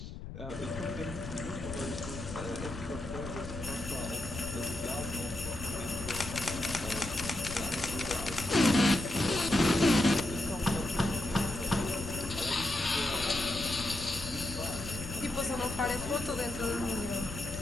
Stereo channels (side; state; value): left; noise; rumble, 10 dB below the sound